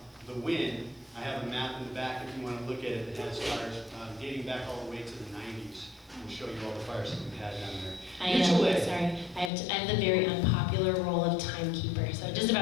the wind. I have a map in the back if you want to look at it that has fires dating back all the way to the 90s. We'll show you all the fires that we've had down there. I have the very unpopular role of timekeeper. So just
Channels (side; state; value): right; drops out; at 9.5 s